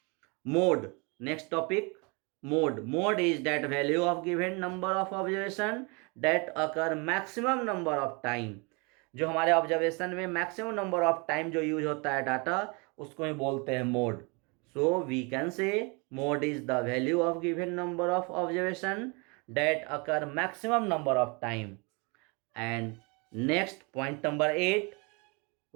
Mode. Next topic, mode. Mode is that value of given number of observation that occur maximum number of time. जो हमारे observation में maximum number of time जो use होता है डाटा, उसको ही बोलते हैं mode. So we can say mode is the value of given number of observation that occur maximum number of time. And next, point number 8,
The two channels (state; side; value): quieter; left; 30.6 dB